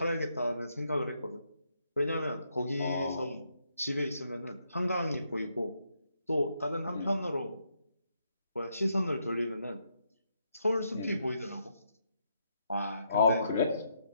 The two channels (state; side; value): inverted; both; correlation -0.77